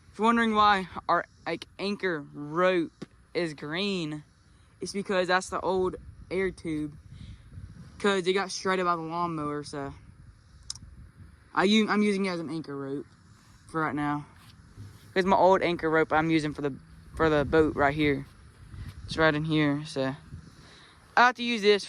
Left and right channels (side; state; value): both; identical; correlation 1.00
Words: if you're wondering why our anchor rope is green, it's because that's the old air tube. Because it got shredded by the lawnmower, so I'm using it as an anchor rope for right now. Because my old anchor rope I'm using for the boat right here. It's right in here, so I have to use this